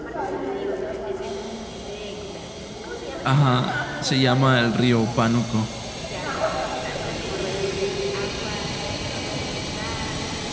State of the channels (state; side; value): identical; both; correlation 1.00